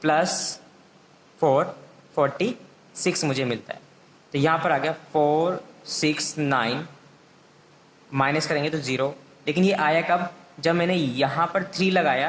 प्लस 4 46 मुझे मिलता है। तो यहाँ पर आ गया 4 6 9, माइनस करेंगे तो 0। लेकिन ये आया कब, जब मैंने यहाँ पर 3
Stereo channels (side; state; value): both; identical; correlation 1.00